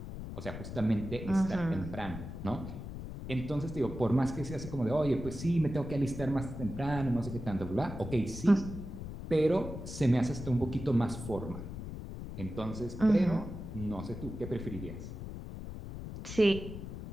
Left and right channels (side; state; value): left; noise; rumble, 9 dB below the sound